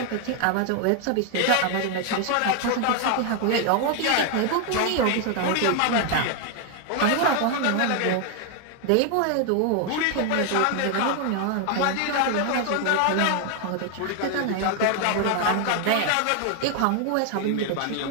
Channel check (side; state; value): both; different; correlation 0.00